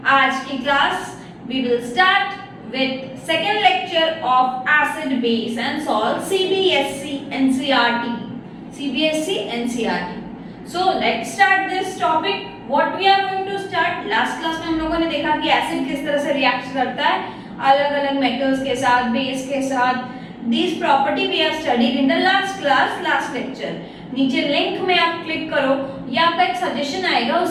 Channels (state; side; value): identical; both; correlation 1.00